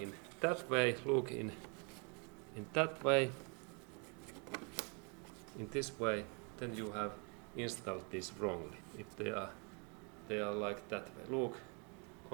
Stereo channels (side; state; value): left; quieter; 35.6 dB